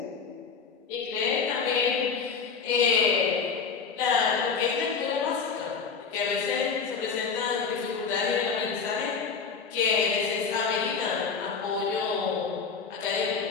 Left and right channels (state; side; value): quieter; right; 5.6 dB